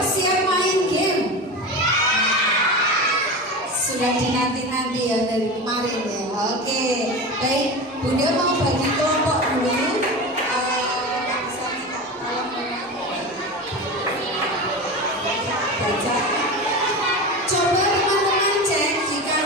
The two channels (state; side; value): normal; both; correlation 0.26